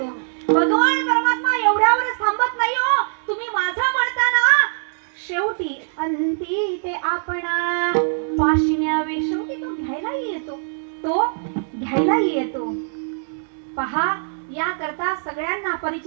भगवान परमात्मा एवढ्यावरच थांबत नाही हो. तुम्ही माझं म्हणताना शेवटी अंती ते आपणा पाशिन्यावे. शेवटी तो घ्यायलाही येतो, तो घ्यायलाही येतो. पहा या करता सगळ्यांना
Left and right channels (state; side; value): silent; left; digital silence